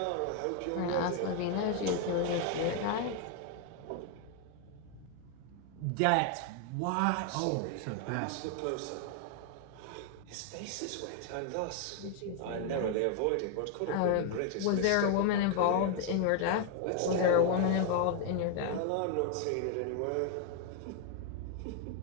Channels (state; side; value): different; both; correlation 0.00